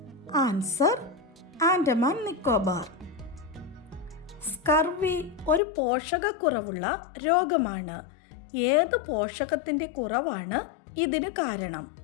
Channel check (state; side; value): drops out; right; at 5.6 s